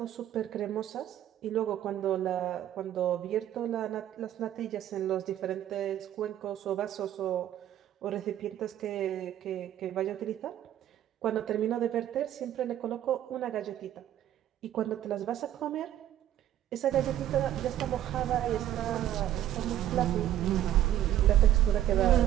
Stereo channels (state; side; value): quieter; left; 11.9 dB